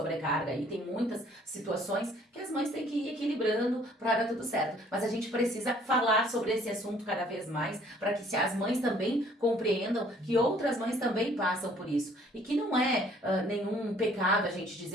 e tem muitas situações que as mães têm que ir equilibrando para dar tudo certo. Mas a gente precisa falar sobre esse assunto cada vez mais, para que as mães também compreendam que outras mães também passam por isso. E que não é nenhum pecado a gente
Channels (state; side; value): normal; both; correlation 0.58